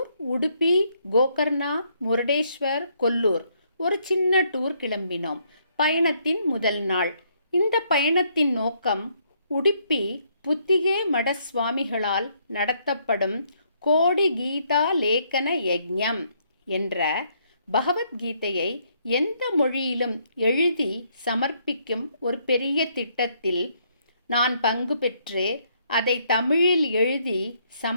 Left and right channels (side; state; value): both; inverted; correlation -0.70